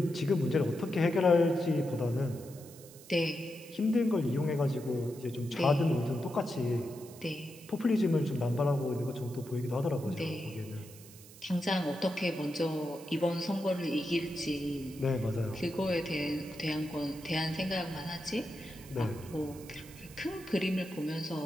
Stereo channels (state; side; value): noise; right; hiss, 19 dB below the sound